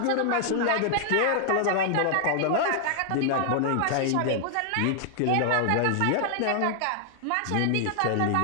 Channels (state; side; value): different; both; correlation 0.00